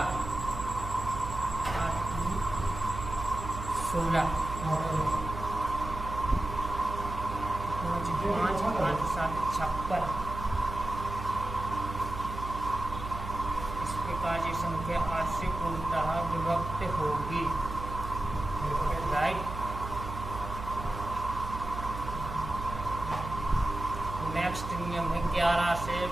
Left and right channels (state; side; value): noise; right; hum, 8 dB below the sound